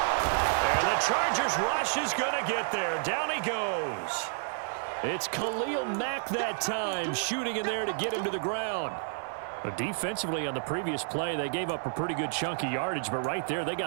And the Chargers rush is going to get there. Down he goes. It's Khalil Mack that time, shooting in there to get him to the ground. But defensively on the previous play, they gave up a pretty good chunk of yardage, but right there, they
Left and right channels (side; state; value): left; silent; 58 dB below the other